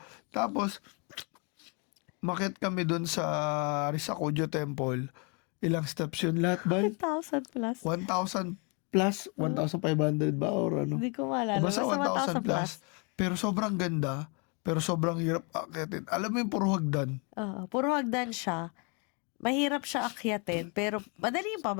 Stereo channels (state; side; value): quieter; right; 33.8 dB